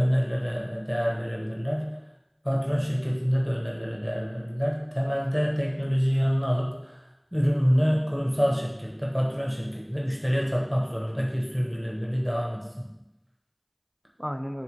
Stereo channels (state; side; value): identical; both; correlation 1.00